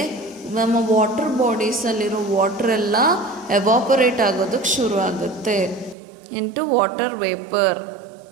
ನಮ್ಮ ವಾಟರ್ ಬಾಡೀಸಲ್ಲಿರೋ ವಾಟರ್ ಎಲ್ಲ ಎವಾಪರೇಟ್ ಆಗೋದಕ್ಕೆ ಶುರು ಆಗುತ್ತೆ into water vapour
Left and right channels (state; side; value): drops out; left; at 6.0 s